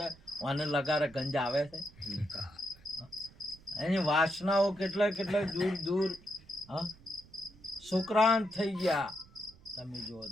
અને લગારે ગંજ આવે છે. એની વાસનાઓ કેટલા દૂર સુક્રાંત થઈ ગયા. તમે જુઓ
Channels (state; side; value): noise; right; rumble, 24 dB below the sound